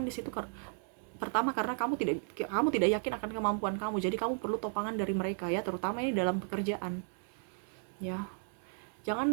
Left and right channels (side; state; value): left; silent; 55 dB below the other